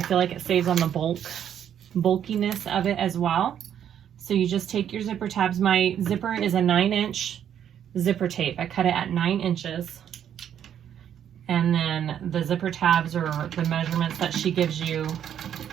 like it saves on the bulkiness of it as well. So you just take your zipper tabs. My zipper is a 9-inch zipper tape. I cut it at 9 inches. And then the zipper tabs are the measurements that she gives you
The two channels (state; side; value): quieter; left; 9.5 dB